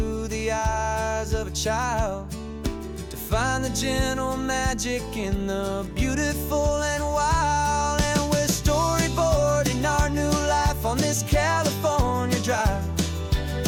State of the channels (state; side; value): identical; both; correlation 1.00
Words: the eyes of a child, to find the gentle magic in the beautiful and wild. And we're storyboarding our new life on this California drive,